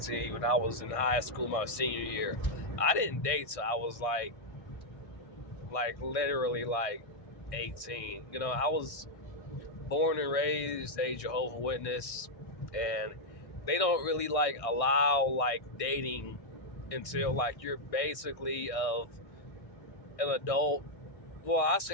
when I was in high school my senior year. I didn't date till I was literally like 18. I was born and raised a Jehovah's Witness, and they don't really allow dating until you're basically of an adult. Well, I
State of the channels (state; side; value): late; right; 1.6 ms